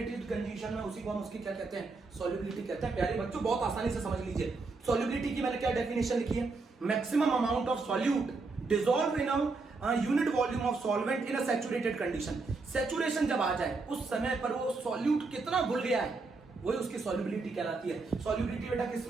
कंडीशन में, उसी को हम उसकी क्या कहते हैं, सॉल्युबिलिटी कहते हैं। प्यारे बच्चों बहुत आसानी से समझ लीजिए। सॉल्युबिलिटी की मैंने क्या डेफिनेशन लिखी है, maximum amount of solute dissolve in a unit volume of solvent in a saturated condition. Saturation जब आ जाए उस समय पर वो सॉल्यूट कितना घुल गया है, वही उसकी सॉल्युबिलिटी कहलाती है। सॉल्युबिलिटी बेटा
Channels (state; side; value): quieter; left; 3.9 dB